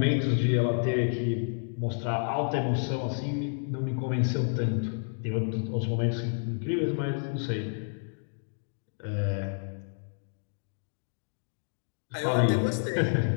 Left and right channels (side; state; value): right; silent; digital silence